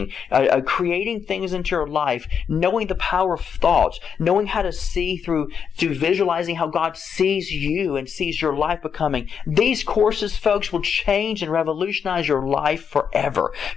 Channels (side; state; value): right; quieter; 7.1 dB